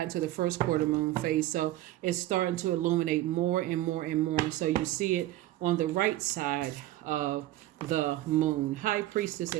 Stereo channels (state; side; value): quieter; left; 15.4 dB